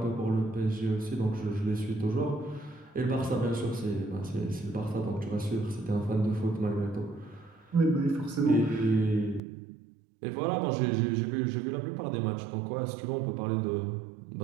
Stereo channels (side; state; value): left; drops out; at 9.4 s